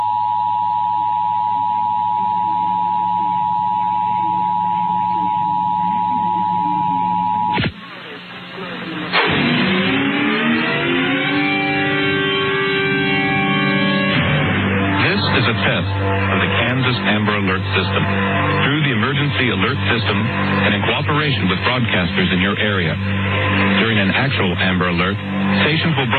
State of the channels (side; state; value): both; identical; correlation 1.00